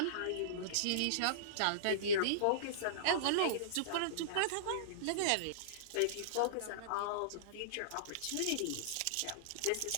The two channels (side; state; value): both; different; correlation -0.03